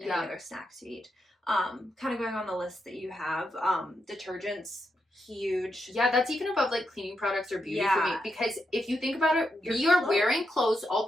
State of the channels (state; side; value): normal; both; correlation 0.84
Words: any other snacks you eat. Kind of going on the list that you have, detergents, huge. Yeah, that's even above like cleaning products or beauty for me, because if you think about it, we are wearing clothes all